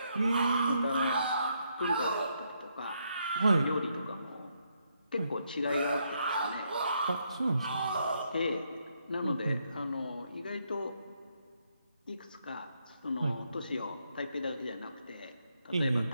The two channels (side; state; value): both; inverted; correlation -0.76